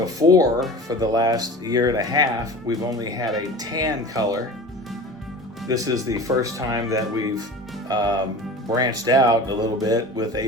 for the last year and a half, we've only had a tan color. This is the first time that we've branched out a little bit with a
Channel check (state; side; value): normal; both; correlation 0.36